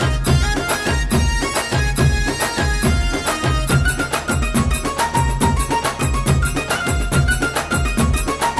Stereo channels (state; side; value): identical; both; correlation 1.00